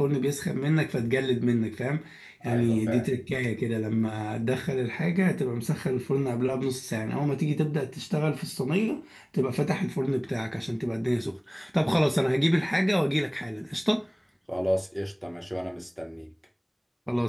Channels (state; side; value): identical; both; correlation 1.00